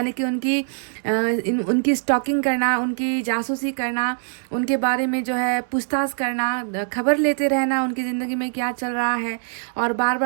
कि उनकी स्टॉकिंग करना, उनकी जासूसी करना, उनके बारे में जो है पूछताछ करना, खबर लेते रहना उनकी ज़िंदगी में क्या चल रहा है, और बार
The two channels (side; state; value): left; silent; 64 dB below the other